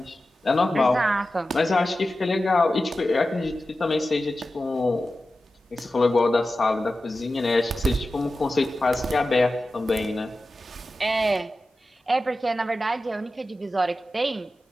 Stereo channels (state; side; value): normal; both; correlation 0.94